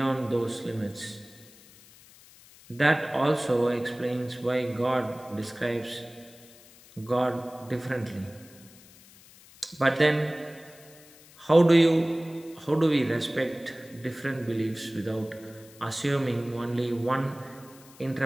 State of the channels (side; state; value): left; noise; hiss, 23 dB below the sound